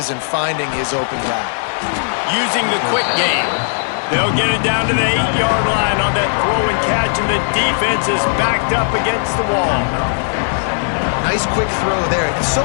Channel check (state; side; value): silent; right; digital silence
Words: and finding his open guy. Using the quick game. They'll get it down to the 8-yard line on that throw and catch, and the defense is backed up against the wall. Nice quick throw there. It's so